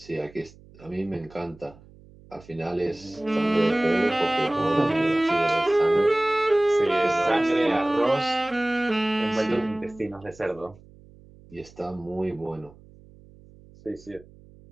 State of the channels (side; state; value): right; noise; hum, 24 dB below the sound